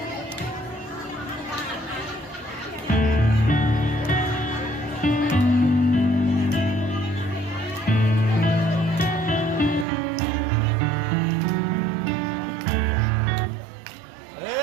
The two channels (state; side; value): drops out; left; at 9.9 s